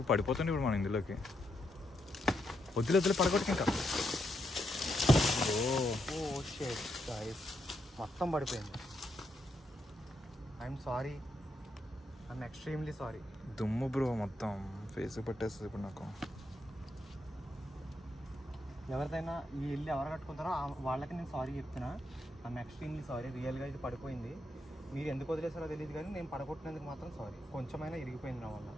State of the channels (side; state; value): both; normal; correlation 0.81